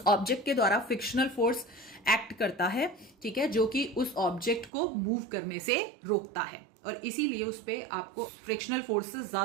ऑब्जेक्ट के द्वारा फ्रिक्शनल फोर्स एक्ट करता है, ठीक है, जो कि उस ऑब्जेक्ट को मूव करने से रोकता है और इसीलिए उस पे आपको फ्रिक्शनल फोर्स से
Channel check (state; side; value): drops out; left; at 4.7 s